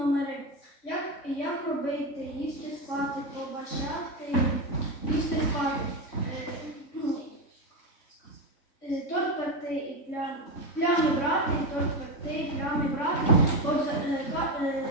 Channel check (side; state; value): right; late; 3.6 ms